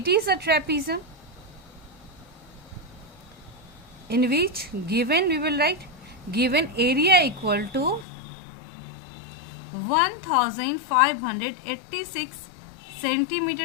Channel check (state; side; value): drops out; right; at 8.1 s